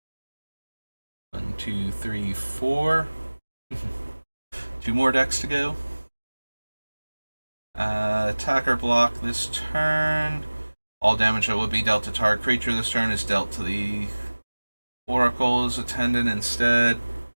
One, two, three, four. 2 more decks to go. Attacker block this turn. All damage that would be dealt to target creature this turn is dealt to the Oracle's attendant instead.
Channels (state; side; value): inverted; both; correlation -1.00